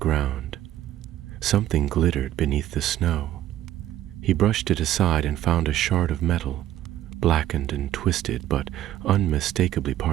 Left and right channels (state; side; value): quieter; left; 12.9 dB